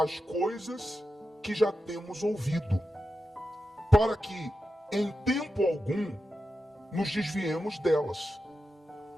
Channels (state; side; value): normal; both; correlation 0.90